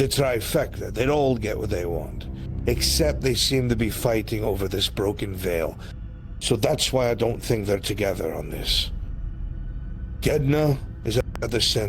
trifecta. They'd all get what they want. Except they seem to be fighting over this broken veil. So that's why I don't think they're together on this. Gedna is at the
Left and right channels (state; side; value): identical; both; correlation 1.00